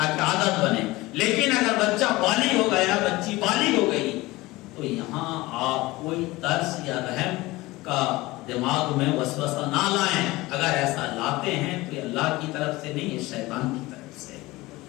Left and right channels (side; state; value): right; quieter; 20.1 dB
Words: عادت بنے۔ لیکن اگر بچہ بالغ ہو گیا، بچی بالغ ہو گئی تو یہاں آپ کوئی ترس یا رحم کا دماغ میں وسوسہ نہ لائیں۔ اگر ایسا لاتے ہیں تو یہ اللہ کی طرف سے نہیں، یہ شیطان کی طرف سے۔